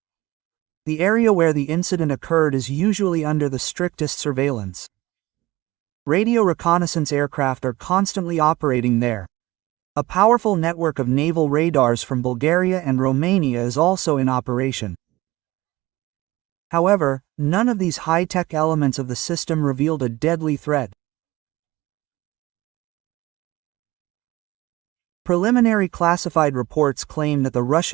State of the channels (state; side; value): quieter; left; 19.1 dB